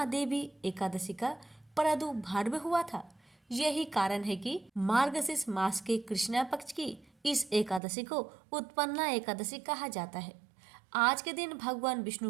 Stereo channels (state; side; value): drops out; left; at 7.8 s